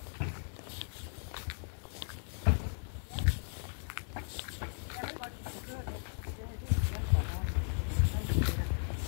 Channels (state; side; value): silent; right; 54 dB below the other